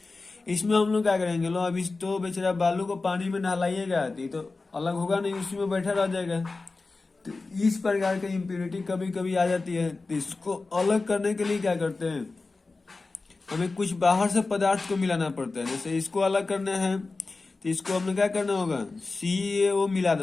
इसमें हम लोग क्या करेंगे, लो अब इस तो बेचारा बालू को पानी में नहलाइएगा तो अलग होगा नहीं, उसी में बैठा रह जाएगा। तो इस प्रकार की इम्प्यूरिटी कभी कभी आ जाती है। तो इसको अलग करने के लिए क्या करते हैं, हमें कुछ बाहर से पदार्थ को मिलाना पड़ता है। जैसे इसको अलग करना है तो इसको हमें क्या करना होगा, CaO मिला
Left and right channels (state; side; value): quieter; right; 3.7 dB